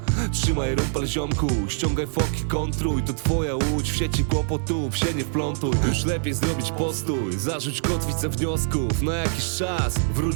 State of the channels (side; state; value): left; silent; digital silence